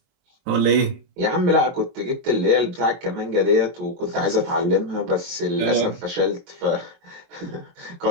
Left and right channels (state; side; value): late; left; 23 ms